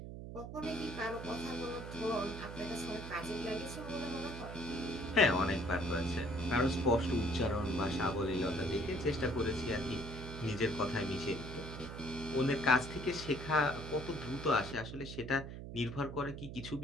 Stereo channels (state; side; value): noise; right; hum, 9 dB below the sound